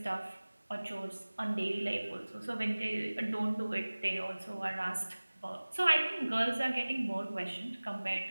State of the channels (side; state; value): both; inverted; correlation -1.00